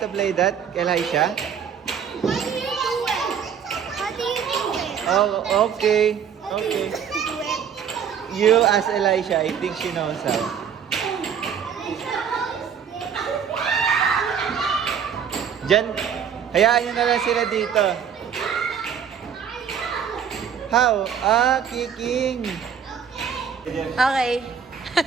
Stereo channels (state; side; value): quieter; left; 7.6 dB